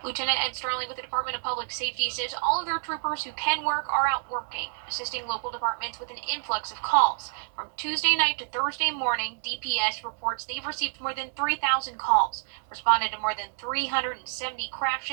Lieutenant Ed Sterling with the Department of Public Safety says all of their troopers who can work are out working, assisting local departments with an influx of calls. From Tuesday night to Thursday morning, DPS reports they've received more than 3,000 calls, responded to more than 370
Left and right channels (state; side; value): silent; left; digital silence